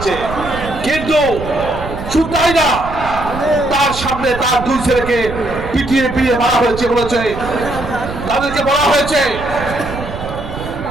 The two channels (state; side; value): noise; right; rumble, 10 dB below the sound